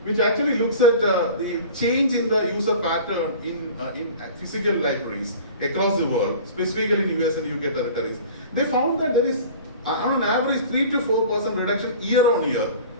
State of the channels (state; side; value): inverted; both; correlation -0.41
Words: which actually looks at the change in the user pattern in physical libraries across the world, specifically in US and UK territories. They found that there is on an average 3 to 4% reduction year on year